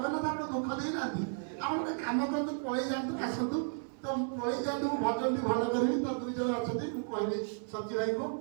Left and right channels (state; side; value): silent; left; 55 dB below the other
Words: आपन दुख देई नाथि आपण काम करतु पळै जांतु कासतु तो पळै जांतु भजन भी भलो करी तो दुई जन अछथि मु कहबे सची भाई को